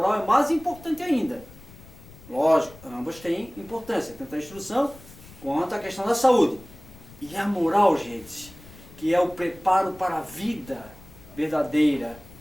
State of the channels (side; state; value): left; noise; rumble, 20 dB below the sound